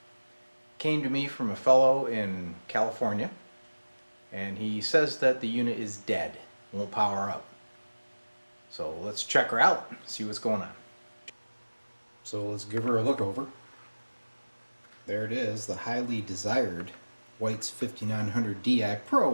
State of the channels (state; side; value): inverted; both; correlation -1.00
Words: Came to me from a fellow in California, and he says that the unit is dead, won't power up. So let's check her out, see what's going on. So let's give her a look over. There it is, the highly desired White's 5900 Di